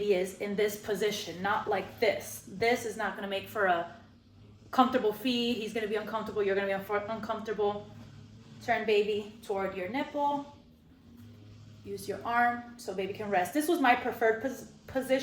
is in this position, not like this. This is not going to make for a comfortable feed. He's going to be uncomfortable. You're going to be uncomfortable. Turn baby toward your nipple. Use your arm so baby can rest. This was my preferred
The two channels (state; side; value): identical; both; correlation 1.00